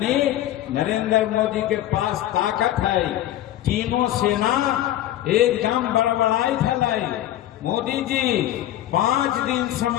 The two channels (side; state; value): right; quieter; 13.4 dB